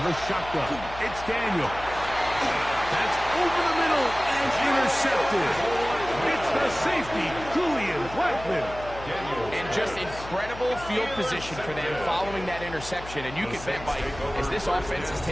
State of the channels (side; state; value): left; noise; hum, 14 dB below the sound